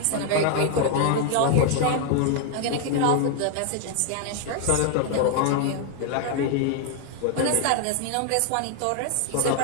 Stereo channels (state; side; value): different; both; correlation 0.00